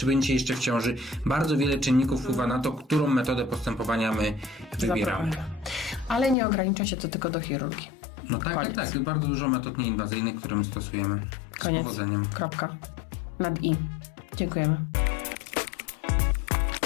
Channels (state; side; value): drops out; right; at 6.4 s